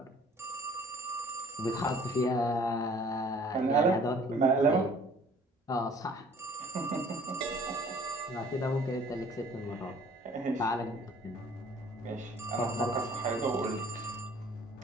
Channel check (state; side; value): normal; both; correlation 0.53